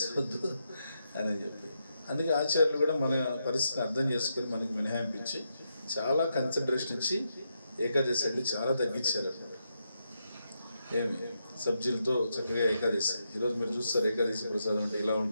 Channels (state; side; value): inverted; both; correlation -0.83